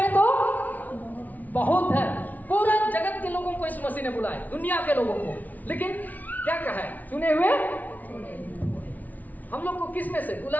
तो बहुत है, पूरा जगत के लोगों को इस मसीह ने बुलाया, दुनिया के लोगों को, लेकिन क्या कहा है? चुने हुए। हम लोग को किस में से?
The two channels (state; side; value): late; right; 0.077 ms